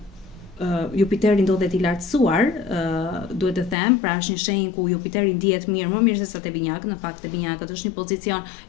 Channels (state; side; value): drops out; right; at 3.8 s